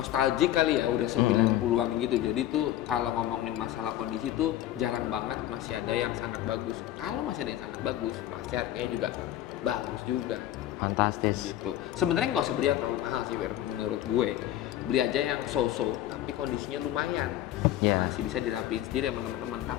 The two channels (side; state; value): right; quieter; 13.0 dB